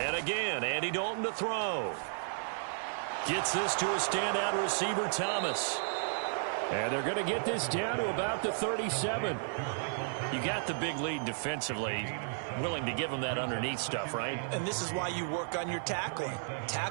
again, Andy Dalton to throw. Gets this to a standout receiver, Thomas. And they're going to get this down to about the 37. You got the big lead defensively. Willing to give them that underneath stuff, right? And this is why you work on your tackling.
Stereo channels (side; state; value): left; silent; 55 dB below the other